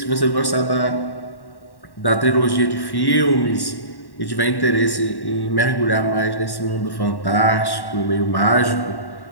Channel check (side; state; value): right; late; 1.1 ms